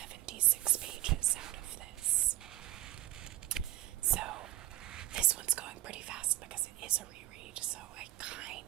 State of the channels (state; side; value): quieter; left; 15.4 dB